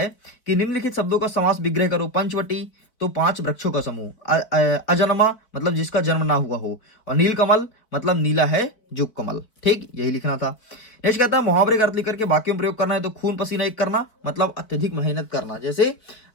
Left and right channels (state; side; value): late; right; 4.4 ms